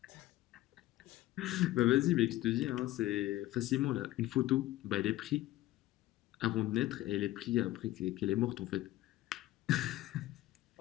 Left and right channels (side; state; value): right; quieter; 15.9 dB